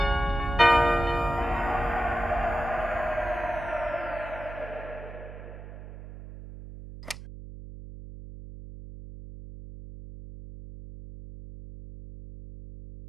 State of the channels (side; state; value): right; noise; hum, 13 dB below the sound